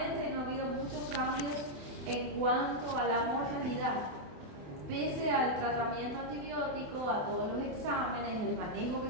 y no ha habido muchos cambios en cuanto a la mortalidad. Pese al tratamiento antibiótico, a todos los exámenes, el manejo que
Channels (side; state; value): left; late; 28 ms